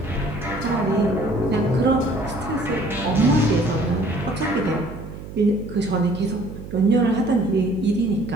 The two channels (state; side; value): noise; right; hum, 12 dB below the sound